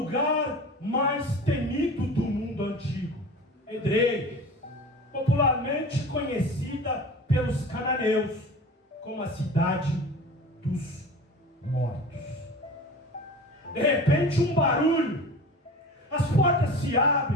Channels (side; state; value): both; normal; correlation 0.37